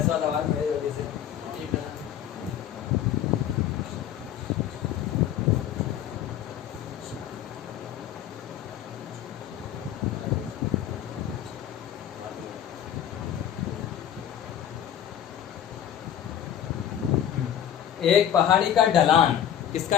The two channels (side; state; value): right; quieter; 10.1 dB